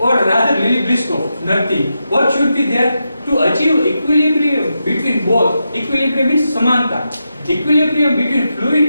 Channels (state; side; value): inverted; both; correlation -0.87